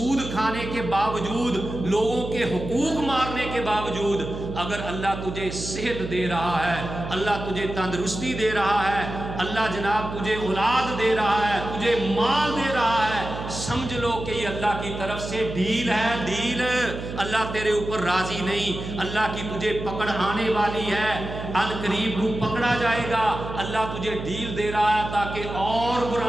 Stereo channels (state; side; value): noise; right; hum, 8 dB below the sound